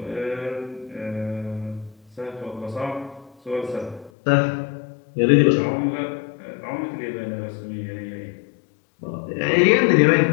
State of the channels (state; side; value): drops out; right; at 4.1 s